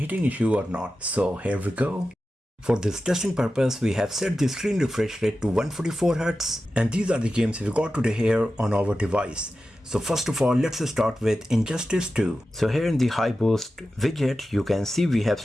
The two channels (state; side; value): normal; both; correlation 0.93